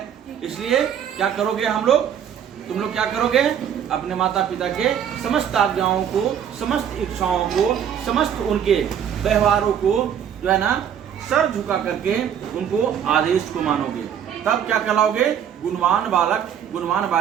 इसलिए क्या करोगे हम लोग, तुम लोग क्या करोगे, अपने माता पिता के समस्त आज्ञाओं को, समस्त इच्छाओं को, समस्त उनके व्यवहारों को जो है ना सर झुका करके उनको आदेश को मानोगे, तब क्या कहलाओगे, गुणवान बालक गुणवान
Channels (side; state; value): left; quieter; 8.9 dB